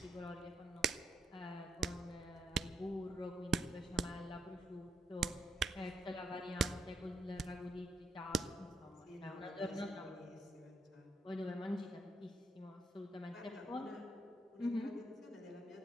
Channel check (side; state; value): both; normal; correlation 0.77